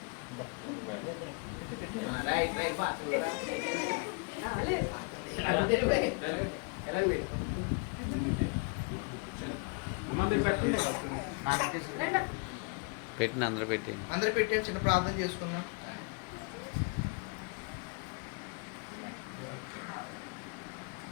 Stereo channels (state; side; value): quieter; right; 35.2 dB